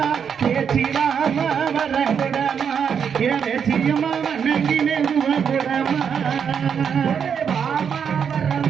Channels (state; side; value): quieter; left; 7.3 dB